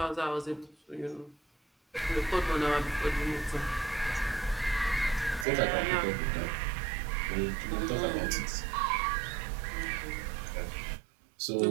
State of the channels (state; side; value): drops out; left; at 5.5 s